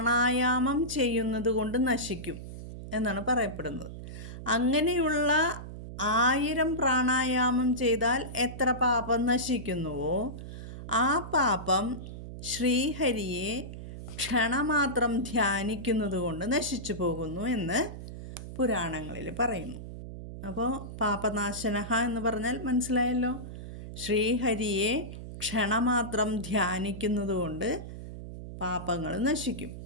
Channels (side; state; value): right; noise; hum, 10 dB below the sound